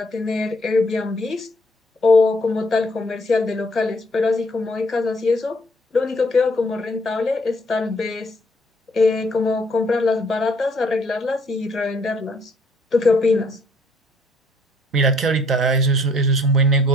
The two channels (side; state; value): both; normal; correlation 0.65